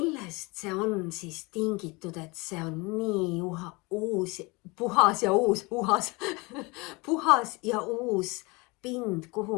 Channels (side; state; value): right; quieter; 26.1 dB